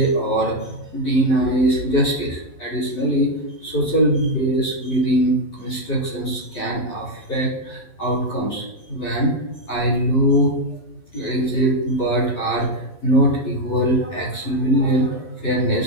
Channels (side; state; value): right; late; 11 ms